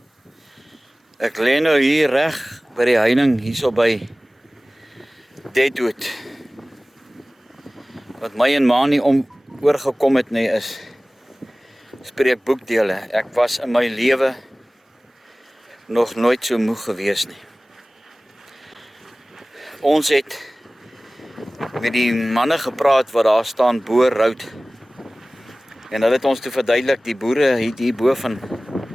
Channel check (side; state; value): both; normal; correlation 0.98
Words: ek lê nou hier reg by die heining hierso by Deadwood. Wat my en ma nie oorgekom het nie is spreekboekdele. Ek was in my lewe nog nooit so moeg gewees nie. Ons het met die manne gepraat wat daar staan bo Roud. En hulle het ons toe verduidelik, die boere het hier bo van